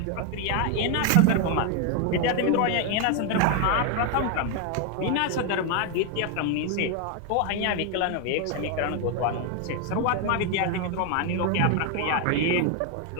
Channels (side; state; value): both; different; correlation 0.01